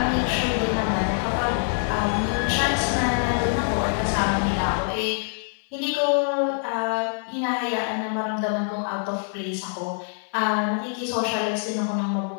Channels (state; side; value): silent; right; 62 dB below the other